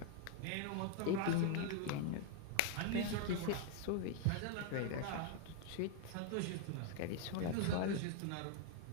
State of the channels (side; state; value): both; different; correlation 0.00